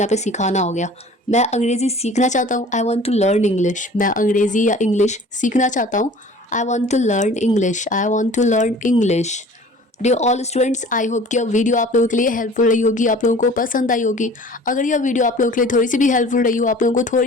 पे सिखाना हो गया। मैं अंग्रेज़ी सीखना चाहता हूँ, I want to learn English. मैं अंग्रेज़ी या इंग्लिश सीखना चाहता हूँ, I want to learn English, I want to learn English. Dear all students, I hope कि यह वीडियो आप लोगों के लिए हेल्पफुल रही होगी, आप लोगों को पसंद आई होगी। अगर यह वीडियो आप लोगों के लिए थोड़ी सी भी हेल्पफुल रही हो, आप लोगों को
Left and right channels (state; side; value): normal; both; correlation 0.46